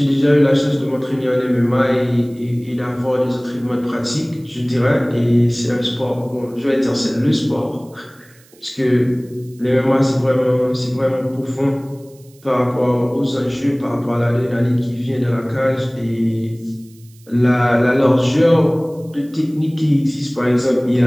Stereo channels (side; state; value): right; noise; hiss, 29 dB below the sound